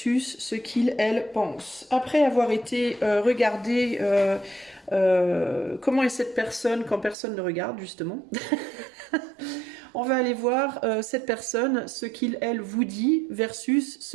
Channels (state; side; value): drops out; left; at 7.2 s